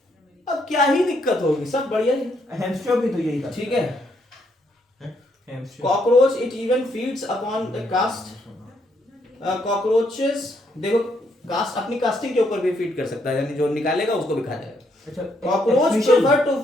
अब क्या ही दिक्कत होगी, सब बढ़िया है। हैमस्टर भी तो यही था, ठीक है। Cockroach it even feeds upon the cast. Cockroaches देखो कास्ट, अपनी कास्टिंग के ऊपर भी फीड कर सकता है, यानी जो निकालेगा उसको भी खा जाएगा। अच्छा, cockroach efficient- prefer to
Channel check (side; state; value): both; normal; correlation 0.73